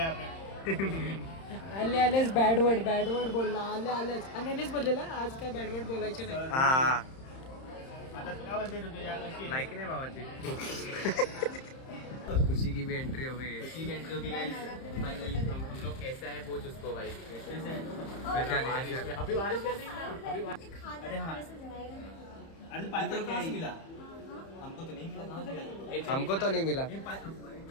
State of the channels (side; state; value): right; late; 31 ms